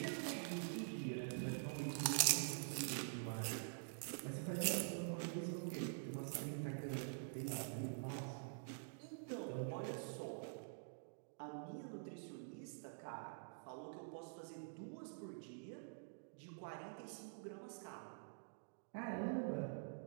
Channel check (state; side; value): silent; left; digital silence